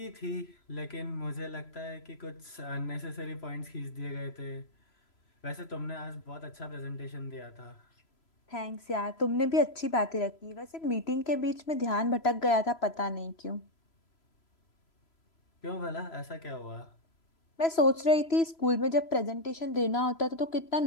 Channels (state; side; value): late; right; 3.0 ms